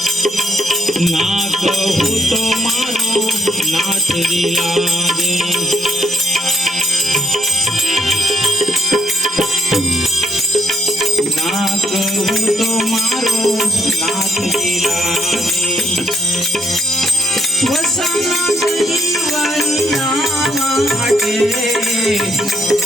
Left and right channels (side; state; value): both; normal; correlation 0.73